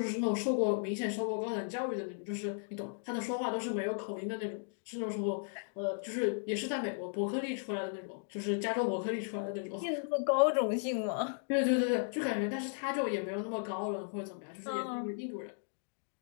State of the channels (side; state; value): right; silent; digital silence